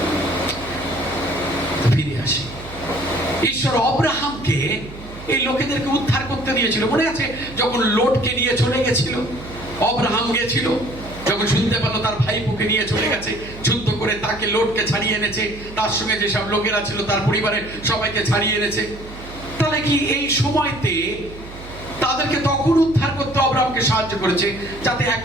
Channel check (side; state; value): right; noise; hum, 15 dB below the sound